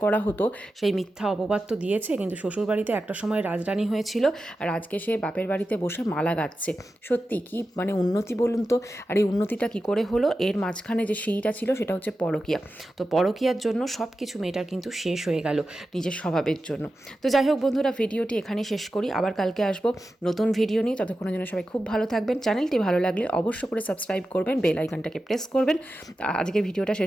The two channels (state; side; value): normal; both; correlation 0.92